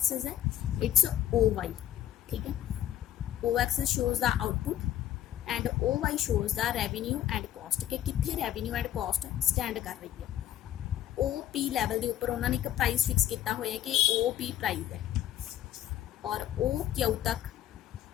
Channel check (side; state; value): right; quieter; 11.9 dB